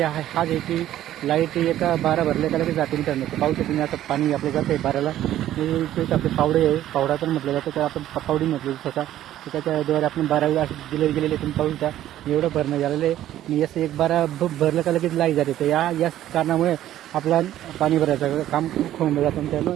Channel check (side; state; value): left; quieter; 12.8 dB